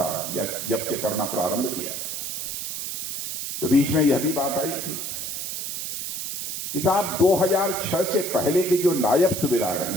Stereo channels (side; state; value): right; noise; hiss, 4 dB below the sound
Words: या जब से करना प्रारंभ किया, तो बीच में यह भी बात आई थी कि साहब 2006 से पहले के जो नायब सूबेदार